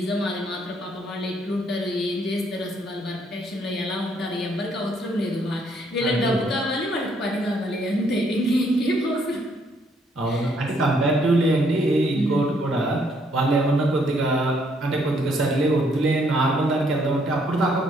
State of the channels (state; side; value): normal; both; correlation 0.69